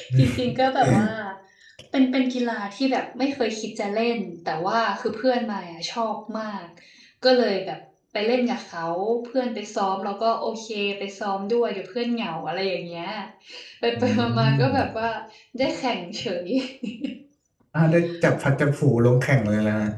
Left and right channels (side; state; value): both; identical; correlation 1.00